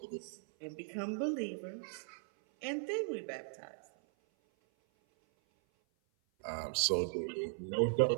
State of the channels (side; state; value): left; silent; 52 dB below the other